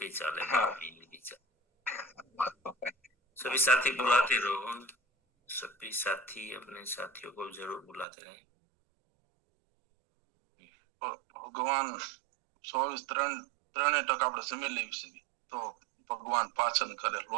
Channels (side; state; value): left; drops out; at 8.1 s